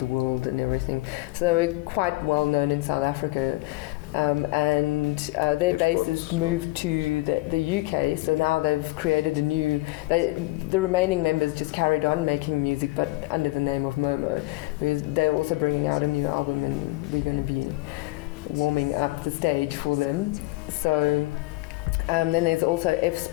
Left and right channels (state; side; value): quieter; right; 21.0 dB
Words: world and everything. So they were quite well known in South Africa. And their bassist moved to the UK, so now they've created a new... the remaining members just carried on making music, but under the name of Momo. They're also bringing out a new album, and we're going to be warming up the stage for them. So then there's also